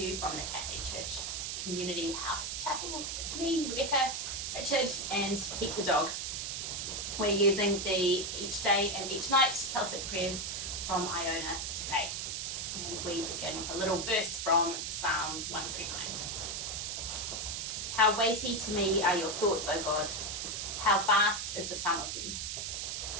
from the Catholic Church Community House Chapel with me, Rebecca, Richard and Pete the dog. We're using the Each Day and Each Night Celtic prayers from Iona today. And we begin with a little verse from Psalm 139. How weighty to me are your thoughts, O God. How vast is the sum of them.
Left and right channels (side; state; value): right; noise; hiss, 3 dB below the sound